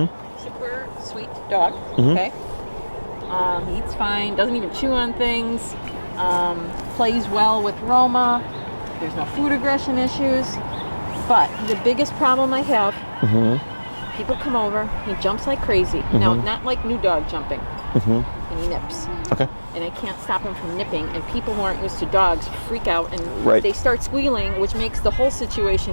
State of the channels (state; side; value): inverted; both; correlation -1.00